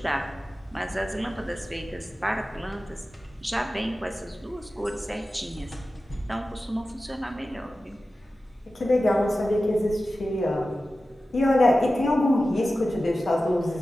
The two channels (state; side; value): normal; both; correlation 0.94